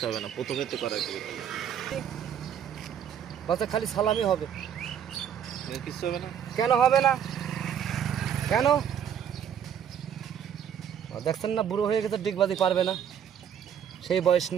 হবে না, প্রথমে তো করা বলছে খালি সালামই হবে। কিছু হবে না। কেন হবে না? কেন? দেখছেন না, বুড়ো হয়ে গেছে, ডিগবাজি পারবে না, সেই বয়স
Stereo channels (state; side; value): quieter; left; 8.8 dB